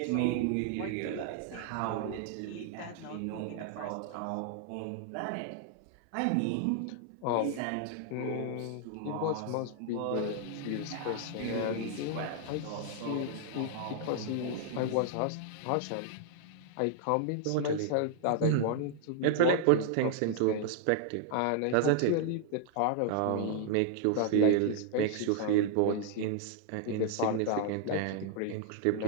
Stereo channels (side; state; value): both; different; correlation 0.00